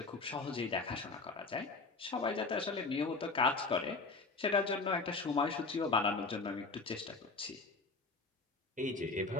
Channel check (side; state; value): right; quieter; 3.8 dB